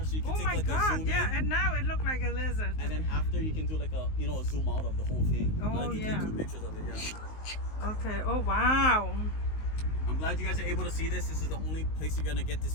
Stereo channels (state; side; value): late; right; 19 ms